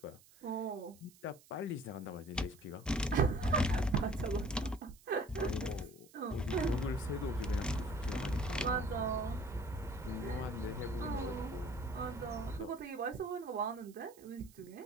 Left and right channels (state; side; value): noise; right; hiss, 25 dB below the sound